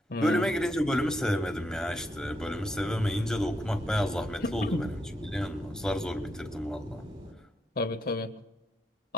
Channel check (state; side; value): normal; both; correlation 0.80